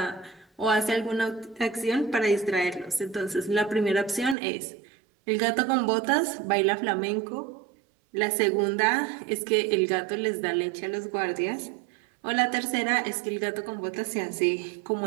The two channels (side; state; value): left; drops out; at 4.4 s